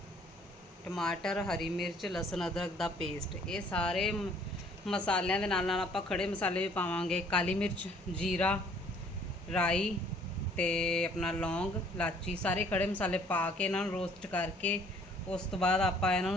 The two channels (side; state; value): both; normal; correlation 0.58